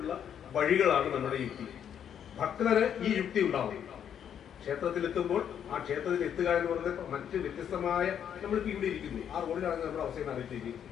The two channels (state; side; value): quieter; right; 8.9 dB